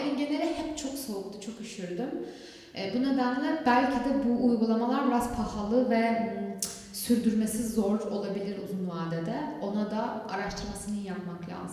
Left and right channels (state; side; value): identical; both; correlation 1.00